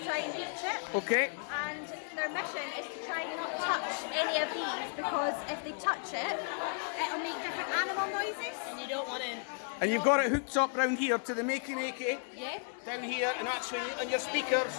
try and reach it. Okay. And their mission is to try and not touch any of these, because if they touch it, it'll make different animal noises. And you don't want to. And you've got it hooked up round here to the Makey Makey. Yeah. Down here, and that's on your speakers.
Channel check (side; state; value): right; silent; 55 dB below the other